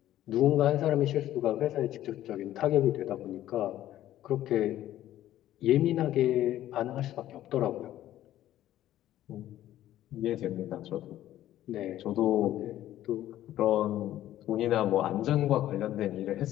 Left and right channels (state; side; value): quieter; right; 13.2 dB